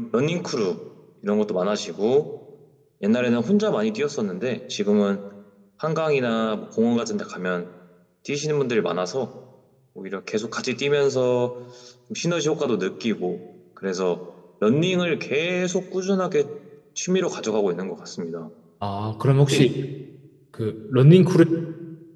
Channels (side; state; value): both; identical; correlation 1.00